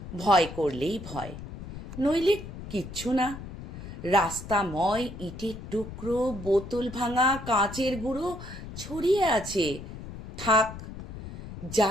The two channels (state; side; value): noise; left; rumble, 12 dB below the sound